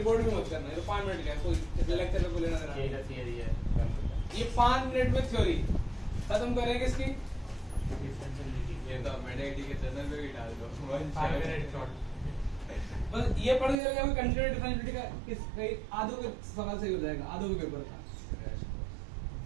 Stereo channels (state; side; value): drops out; left; at 13.8 s